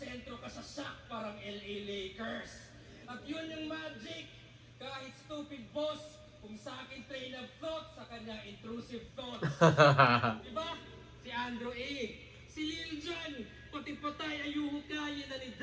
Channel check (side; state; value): both; identical; correlation 1.00